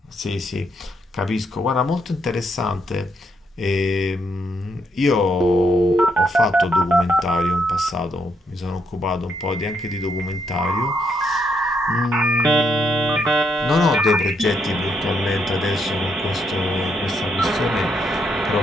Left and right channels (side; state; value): both; normal; correlation 0.77